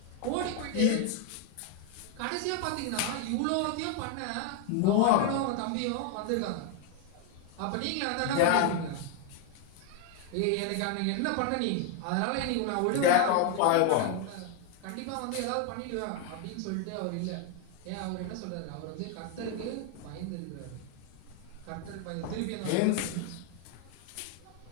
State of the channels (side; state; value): both; different; correlation 0.01